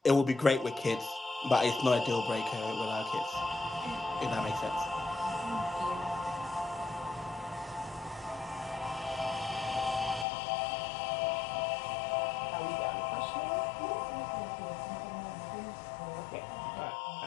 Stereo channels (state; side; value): drops out; right; at 10.2 s